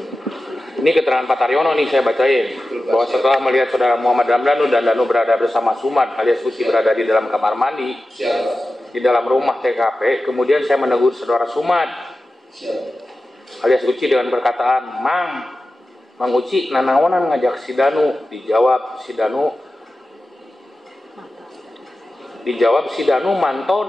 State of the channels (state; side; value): normal; both; correlation 0.94